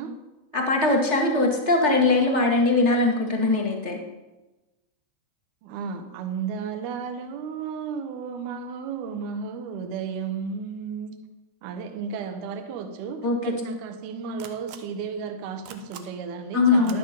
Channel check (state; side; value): late; left; 3.3 ms